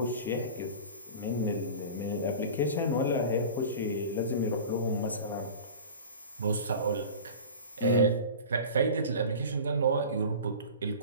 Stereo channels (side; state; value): both; inverted; correlation -0.35